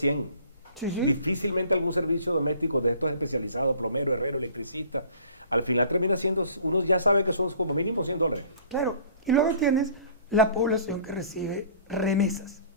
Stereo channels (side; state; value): both; inverted; correlation -0.50